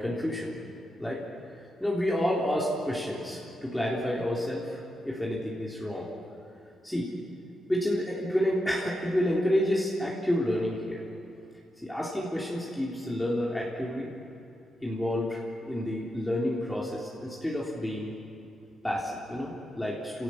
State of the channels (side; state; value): both; normal; correlation 0.86